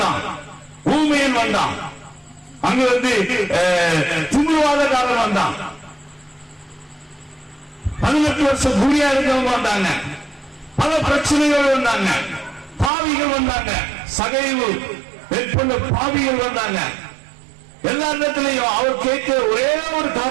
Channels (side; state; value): left; drops out; at 12.9 s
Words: ஊமையன் வந்தான், அங்க வந்து திமிர்வாதக்காரன் வந்தான், 18 வருஷம் குடியா இருக்கவங்க வந்தாங்க, பல பிரச்சனைகள் வந்தாங்க, பாவிகள் வந்தாங்க, சகைவு மேற்கொண்ட பாவிகள் வந்தாங்க. எல்லா இடத்திலையும் அவர் கேட்க ஒரே ஒரு